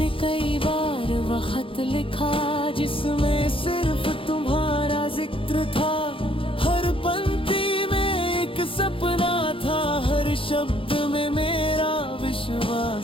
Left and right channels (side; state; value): right; late; 0.26 ms